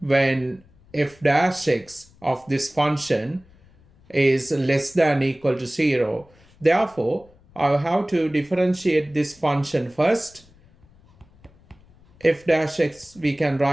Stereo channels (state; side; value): noise; left; rumble, 28 dB below the sound